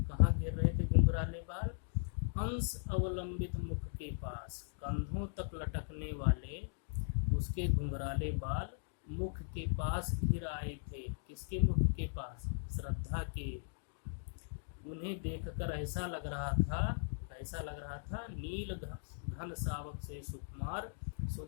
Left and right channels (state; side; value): silent; right; digital silence